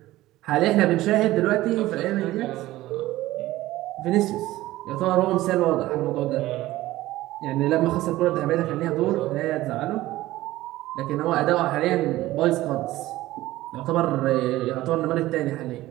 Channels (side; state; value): left; quieter; 16.6 dB